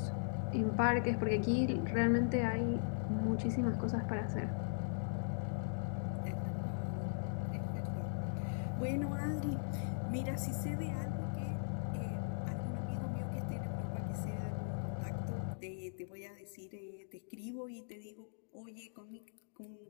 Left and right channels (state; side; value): silent; right; digital silence